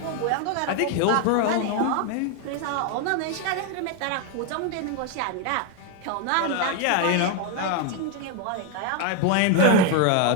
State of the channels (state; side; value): different; both; correlation 0.01